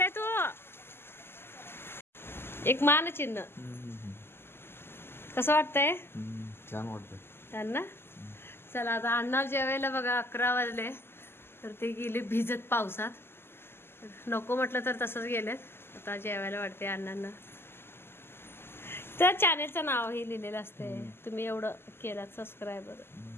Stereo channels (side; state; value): right; late; 0.12 ms